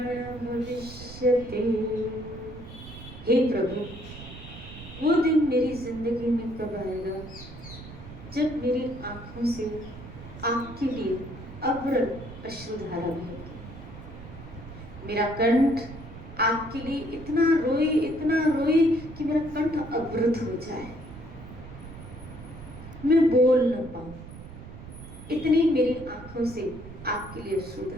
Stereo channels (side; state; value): right; noise; rumble, 14 dB below the sound